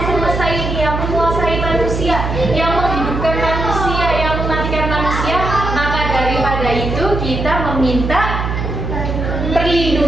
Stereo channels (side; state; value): right; noise; hum, 3 dB below the sound